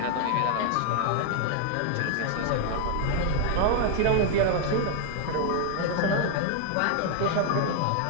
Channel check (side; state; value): both; different; correlation 0.00